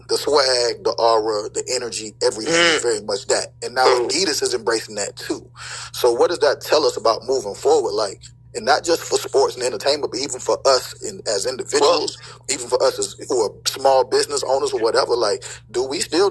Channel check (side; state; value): both; identical; correlation 1.00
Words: the swag, the aura, the energy, everything is very much that. And now Adidas is embracing that too. So what does that tell us about moving forward? Like, and not just for sports and entertainment, but even for us as individuals, even for us who are small business owners or whatever. Like, do we still